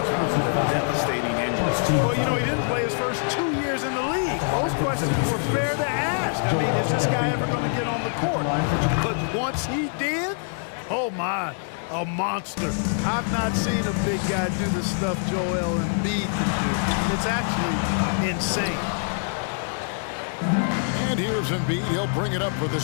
the devastating injuries. Well, you know, he didn't play his first 2 years in the league. Those questions were fair to ask. I mean, is this guy ever going to get on the court? But once he did, oh my, a monster. I've not seen a big guy do the stuff Joel Embiid can do. It's actually insane. And here's Embiid. He'll bring it up for the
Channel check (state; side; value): silent; right; 62 dB below the other